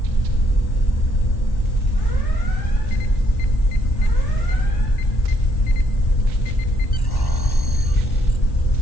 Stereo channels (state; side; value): late; right; 1.1 ms